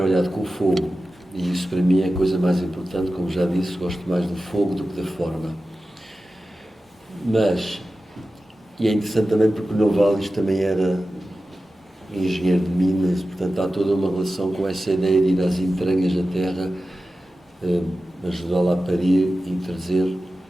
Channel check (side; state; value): both; normal; correlation 0.94